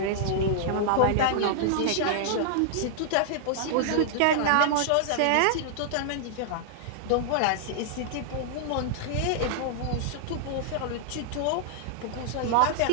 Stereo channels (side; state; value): both; different; correlation -0.01